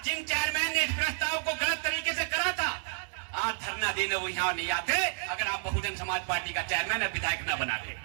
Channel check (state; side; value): silent; left; digital silence